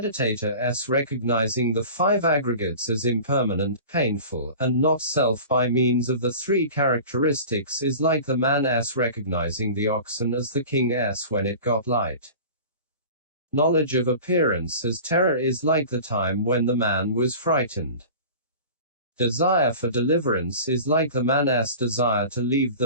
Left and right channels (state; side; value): inverted; both; correlation -0.38